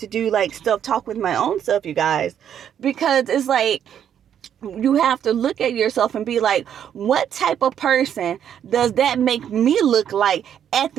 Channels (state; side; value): quieter; left; 9.3 dB